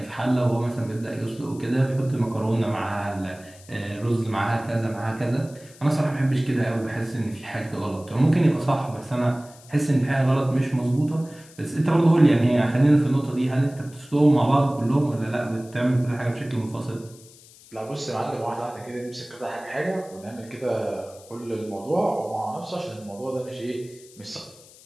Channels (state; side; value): noise; left; hiss, 23 dB below the sound